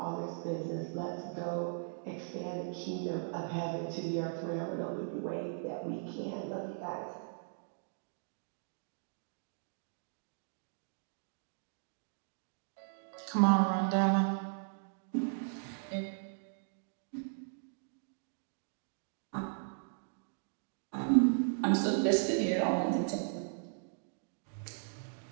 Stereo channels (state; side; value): silent; left; digital silence